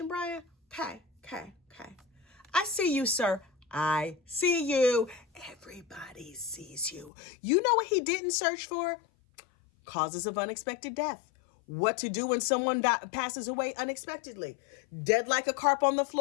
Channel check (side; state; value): right; drops out; at 7.1 s